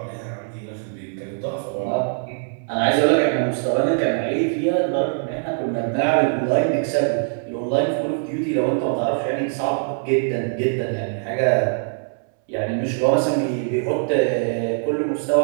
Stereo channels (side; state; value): left; silent; 64 dB below the other